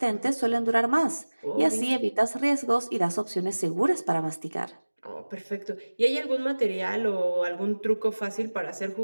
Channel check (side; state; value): both; inverted; correlation -1.00